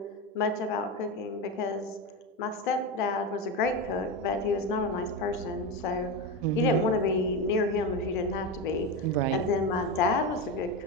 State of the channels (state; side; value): normal; both; correlation 0.16